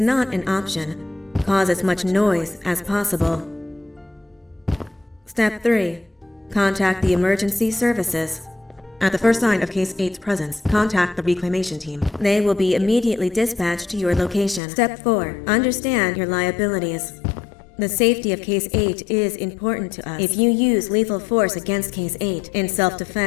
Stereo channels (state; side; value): drops out; right; at 14.6 s